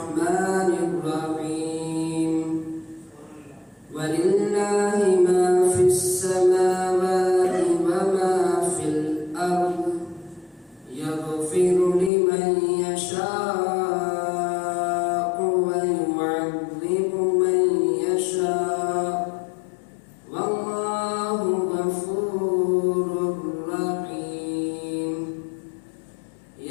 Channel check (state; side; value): drops out; right; at 12.1 s